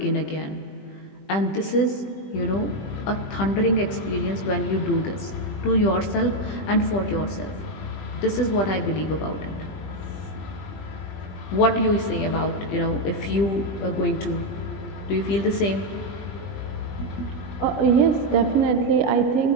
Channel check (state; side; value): late; right; 20 ms